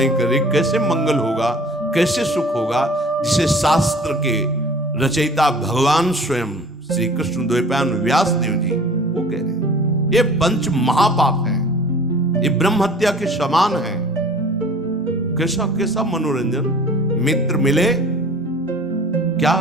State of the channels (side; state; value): both; normal; correlation 0.47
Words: कर रही, कैसे मंगल होगा, कैसे सुख होगा, जिसे शास्त्र के रचयिता भगवान स्वयं श्री कृष्ण द्वैपायन व्यास देव जी वो कह रहे हैं ये पंच महापाप है, ये ब्रह्म हत्या के समान है। कैसा कैसा मनोरंजन, मित्र मिले क्या